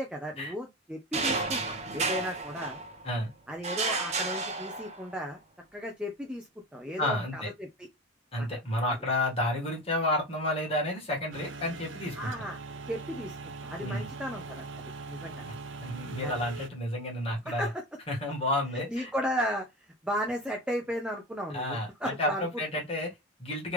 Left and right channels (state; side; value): normal; both; correlation 0.27